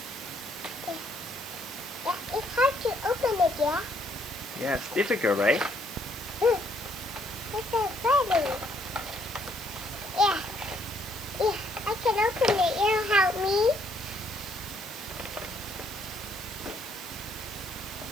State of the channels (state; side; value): noise; left; hiss, 18 dB below the sound